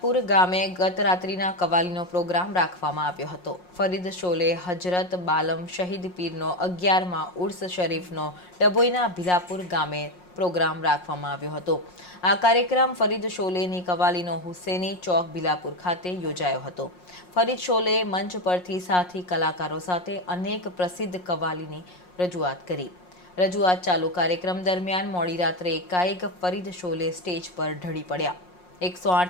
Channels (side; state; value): right; late; 5.6 ms